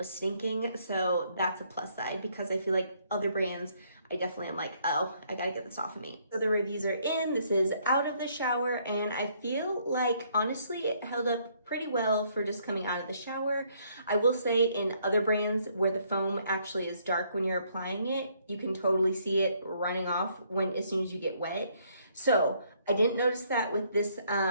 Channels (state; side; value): inverted; both; correlation -0.68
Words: stinking. So that's a plus side because I feel like other brands, I definitely am like, oh, I gotta get this off of me. So the reviews are in, this is out of the shower, and I feel like, honestly, it held up pretty well for just coming out of the shower. I will say in other brands where the foam actually is dark when you're applying it, you can totally see it running off as soon as you get wet. So I didn't notice that with this